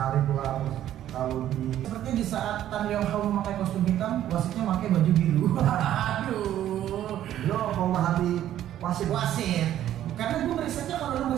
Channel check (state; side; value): quieter; left; 11.9 dB